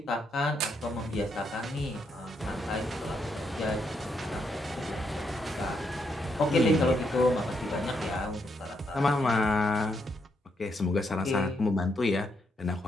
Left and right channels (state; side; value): normal; both; correlation 0.78